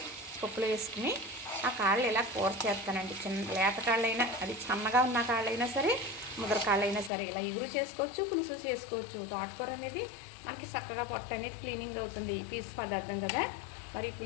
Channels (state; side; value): drops out; right; at 7.1 s